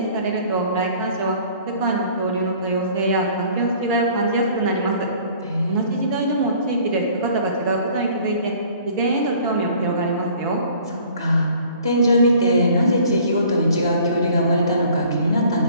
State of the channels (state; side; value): inverted; both; correlation -0.53